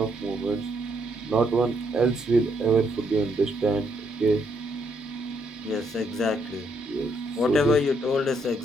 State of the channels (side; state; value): both; normal; correlation 0.74